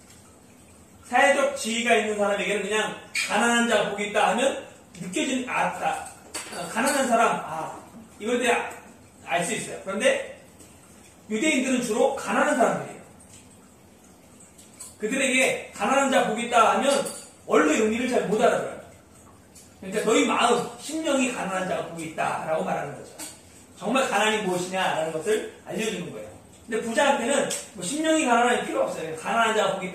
사회적 지위가 있는 사람에게는 그냥 가난한 자가 복이 있다 하면 느껴지는 가난한 사람 이걸 때 알 수 있어요. 그런데 유대인들은 주로 가난한 사람들이에요. 그들에게 가난한 자 복이 있다 하면 원래 의미를 잘 못 알아들어요. 그러니까 너희 마음, 심령이 가난한 자가 복이 있다라고 말하는 거죠. 정말 가난이 무엇이냐라는 것을 알려주는 거예요. 근데 부자한테는 뭐 심령이 가난한 필요 없어요. 가난한 자가 복이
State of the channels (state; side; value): identical; both; correlation 1.00